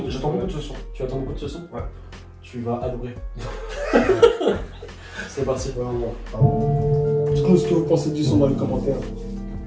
de ce son. Tu attends beaucoup de ce son? Ouais. Tu vas adorer. C'est parti. Dites-nous ce que vous pensez du son dans les commentaires.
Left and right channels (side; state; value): both; identical; correlation 1.00